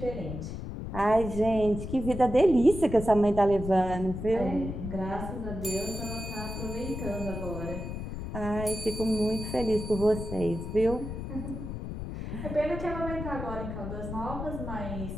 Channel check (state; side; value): noise; left; rumble, 7 dB below the sound